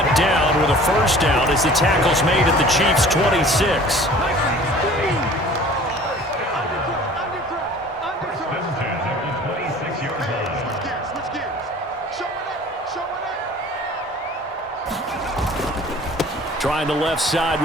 down with a first down as the tackle's made at the Chiefs' 26. Trying the left side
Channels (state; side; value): normal; both; correlation 0.47